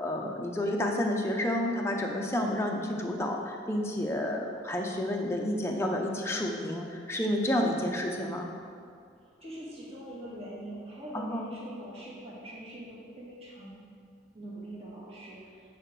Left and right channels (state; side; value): normal; both; correlation 0.60